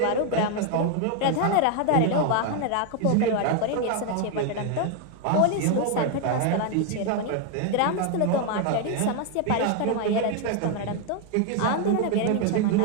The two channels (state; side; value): different; both; correlation 0.01